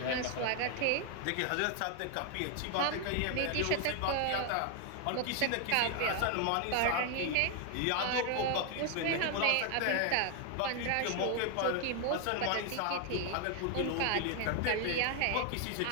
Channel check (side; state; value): both; different; correlation 0.00